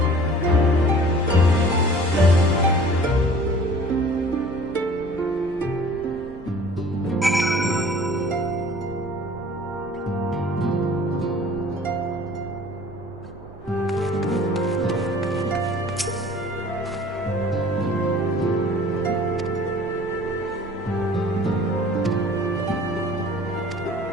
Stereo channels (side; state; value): right; noise; hum, 22 dB below the sound